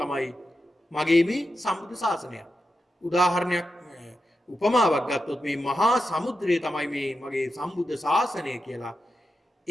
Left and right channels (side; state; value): both; normal; correlation 0.89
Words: මගේ මේ සම්බුද්ධ ශාසනය. උදාහරණයක් උපමාවක් ගත්තොත් මේ මහා සමුද්‍රය තමයි මේ මගේ සම්බුද්ධ ශාසනය කියලා.